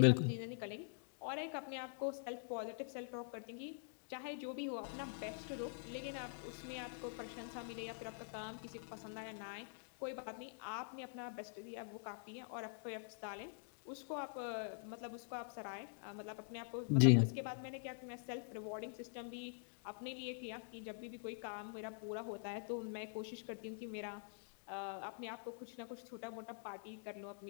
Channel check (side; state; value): right; silent; digital silence